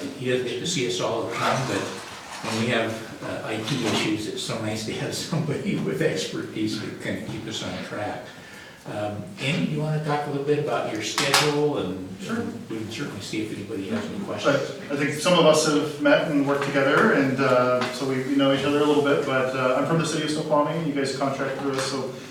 He doesn't get to see us all the time, but when we have IT issues, it's so nice to have somebody with expertise to kind of keep us on track. Andy, do you want to talk a little bit about your schedule? And Sure. We can certainly see if anybody has any questions. I think some of us have met and worked together, and so we know each other a little bit, but I'm from the city of Snoqualmie. You guys contract through us, so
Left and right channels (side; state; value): both; identical; correlation 1.00